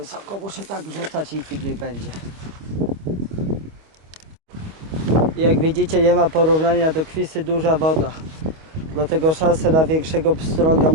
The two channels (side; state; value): left; late; 25 ms